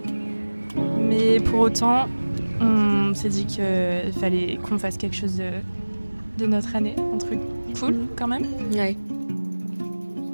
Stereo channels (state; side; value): inverted; both; correlation -1.00